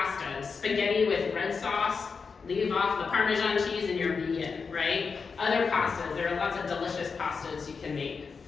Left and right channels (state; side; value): quieter; right; 5.2 dB